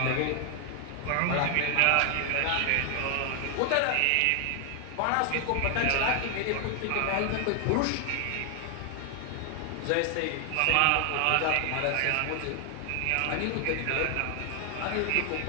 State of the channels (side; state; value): both; different; correlation 0.00